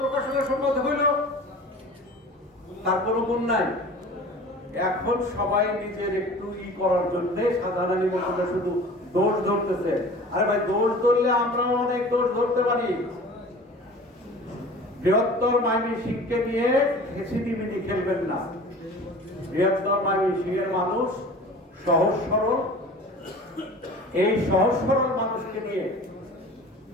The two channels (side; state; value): both; normal; correlation 0.41